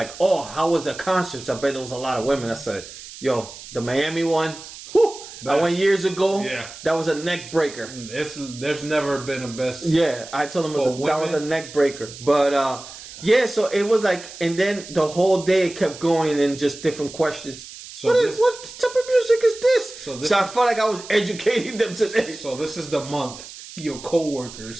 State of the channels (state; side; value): noise; right; hiss, 15 dB below the sound